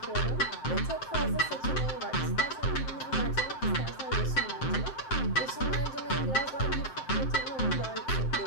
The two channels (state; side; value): late; right; 7.6 ms